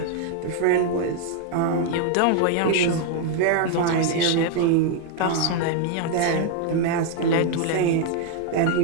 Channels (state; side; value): different; both; correlation 0.00